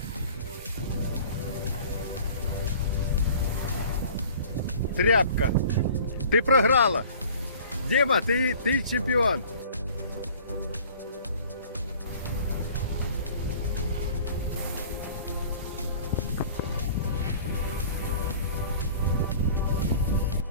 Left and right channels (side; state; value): both; inverted; correlation -0.47